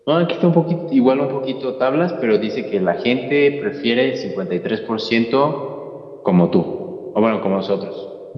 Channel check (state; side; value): identical; both; correlation 1.00